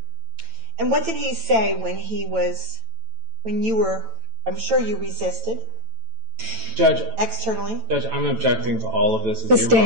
And what did he say when you were, I'm sure you resisted? Judge. Externally? Judge, I'm objecting to all of this.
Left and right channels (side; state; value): left; late; 9.0 ms